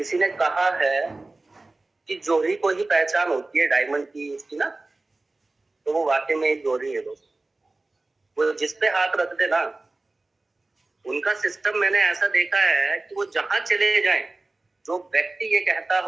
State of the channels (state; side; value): quieter; left; 3.1 dB